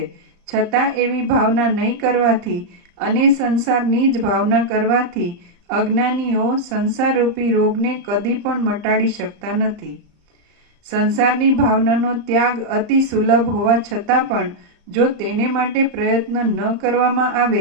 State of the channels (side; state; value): left; late; 35 ms